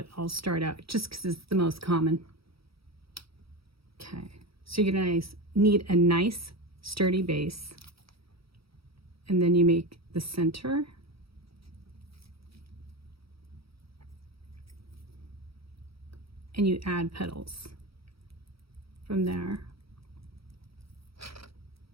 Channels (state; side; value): late; left; 0.76 ms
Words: I'll start out just because it's the most common. Okay, so you're gonna need a nice sturdy base, and then you make the center, and you add petals from there.